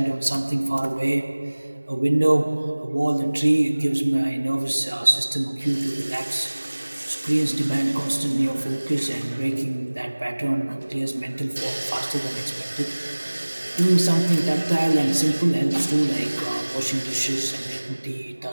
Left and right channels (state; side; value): inverted; both; correlation -1.00